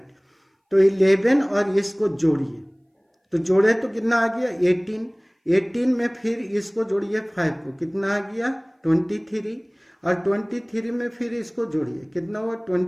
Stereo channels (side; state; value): both; identical; correlation 1.00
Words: तो 11 और इसको जोड़िए, तो जोड़े तो कितना आ गया? 18। 18 में फिर इसको जोड़िए 5 को, कितना आ गया? 23 और 23 में फिर इसको जोड़िए, कितना हुआ?